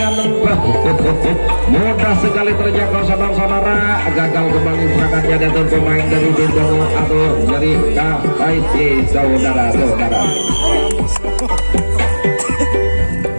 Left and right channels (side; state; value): both; inverted; correlation -1.00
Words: mudah sekali terjangkau saudara-saudara. Gagal kembali serangannya dari pemain dari tim tamu atau dari KIC saudara-saudara.